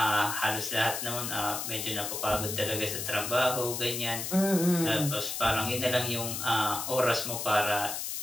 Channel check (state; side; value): noise; left; hiss, 4 dB below the sound